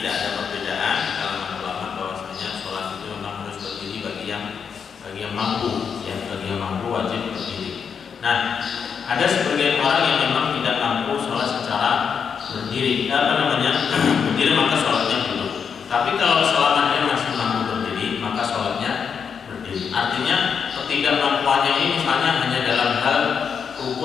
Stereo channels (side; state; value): right; quieter; 6.7 dB